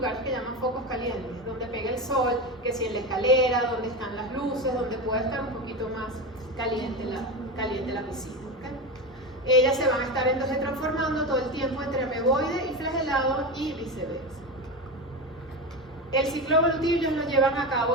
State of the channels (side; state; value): both; normal; correlation 0.20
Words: que llaman focos calientes, donde pega el sol, que si en la escalera, donde están las luces, donde puede estar un poquito más caliente la piscina. ¿Okay? Ellas se van a estar entonces transformando todo el tiempo entre ameboide y flagelado y viceversa. El ciclo evolutivo ellos lo llevan a